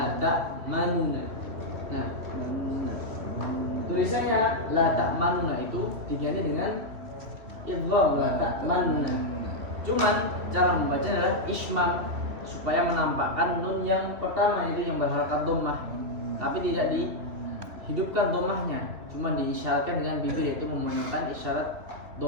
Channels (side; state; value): left; late; 2.8 ms